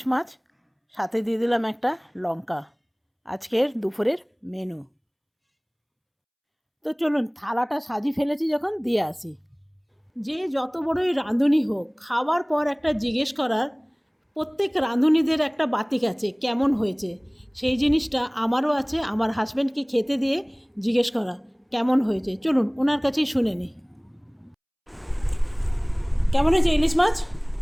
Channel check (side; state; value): both; identical; correlation 1.00